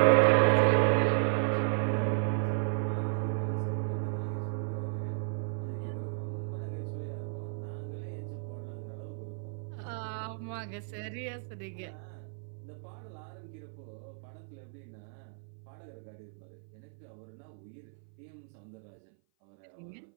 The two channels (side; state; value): left; silent; 55 dB below the other